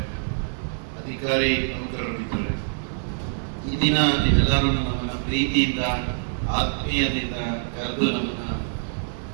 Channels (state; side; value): silent; left; digital silence